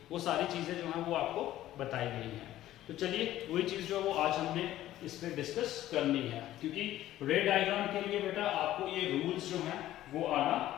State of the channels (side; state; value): right; quieter; 13.9 dB